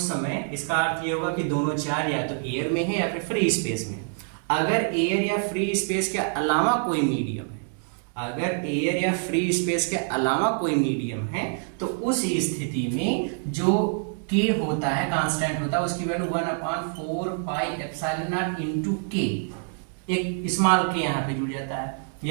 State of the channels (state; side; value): silent; left; 57 dB below the other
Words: समय इसका अर्थ ये होगा कि दोनों चार्ज या तो एयर में है या फिर फ्री स्पेस में। अगर एयर या फ्री स्पेस के अलावा कोई मीडियम है, अगर एयर या फ्री स्पेस के अलावा कोई मीडियम है, तो उस स्थिति में जो के होता है, कांस्टेंट होता है, उसकी वैल्यू 1/4πε0 इंटू के, एक स्मॉल के यहाँ पे जुड़ जाता है।